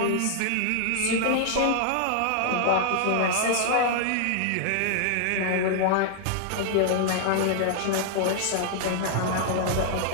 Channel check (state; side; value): different; both; correlation -0.01